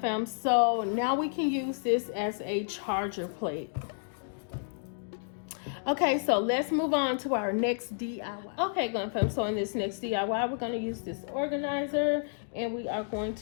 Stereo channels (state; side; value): silent; right; digital silence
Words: so now we can use this as a charger plate. Okay, so let's move on to our next DIY. Okay, Glam Fam, so in this next DIY, we're going to use this organizer, and we are going